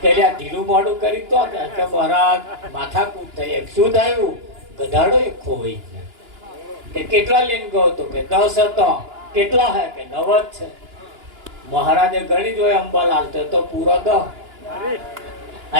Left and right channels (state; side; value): late; left; 2.9 ms